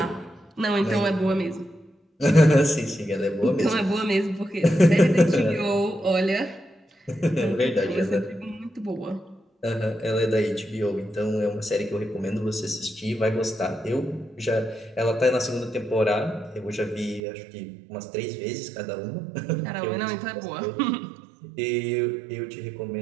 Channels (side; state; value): left; drops out; at 17.2 s